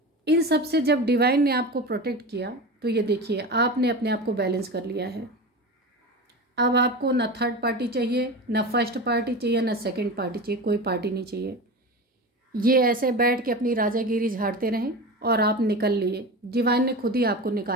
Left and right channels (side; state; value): both; normal; correlation 0.27